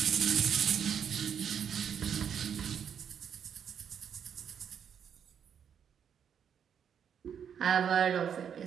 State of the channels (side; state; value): left; quieter; 8.0 dB